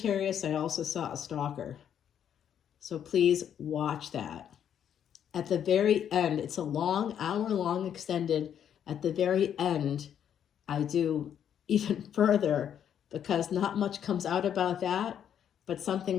I also saw a stalker. So please watch that. At the very end, it's a long, hour-long extended. At the very end, I do even further because not much comes out about that, but something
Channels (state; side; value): quieter; right; 9.2 dB